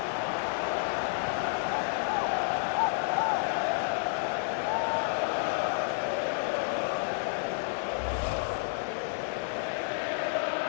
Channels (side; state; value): right; silent; digital silence